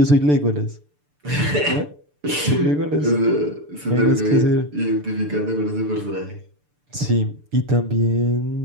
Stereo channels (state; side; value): late; left; 6.8 ms